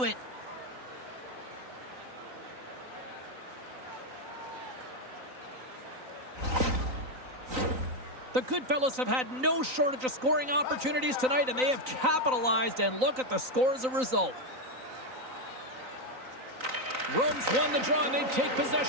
it. The Goodfellas have had no shortage of scoring opportunities tonight, and they have capitalized, and look at the score as a result. Rome's won the draw, and they take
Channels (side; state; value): left; late; 3.9 ms